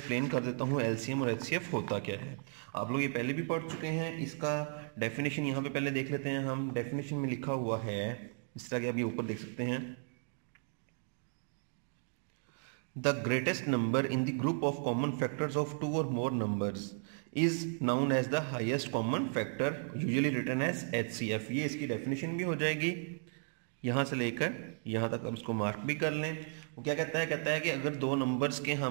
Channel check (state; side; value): silent; left; 54 dB below the other